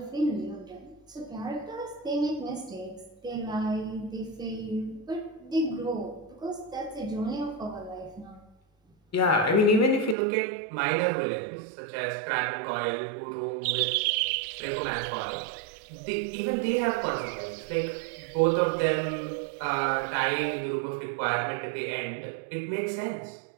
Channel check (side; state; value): left; drops out; at 10.2 s